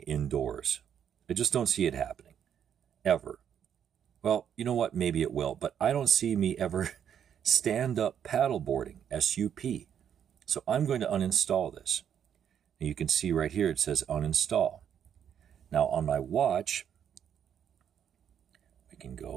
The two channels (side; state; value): left; quieter; 8.8 dB